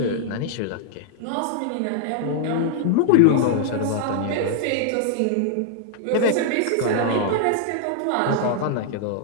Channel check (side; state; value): both; different; correlation 0.00